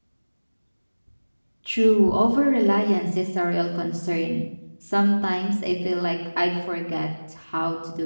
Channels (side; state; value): both; inverted; correlation -1.00